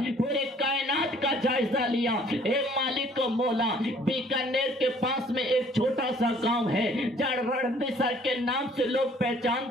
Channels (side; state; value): both; normal; correlation 0.58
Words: پورے کائنات کا جائزہ لیا۔ اے مالک و مولا بیکانیر کے پاس میں ایک چھوٹا سا گاؤں ہے جہاں رڑمسر کے نام سے لوگ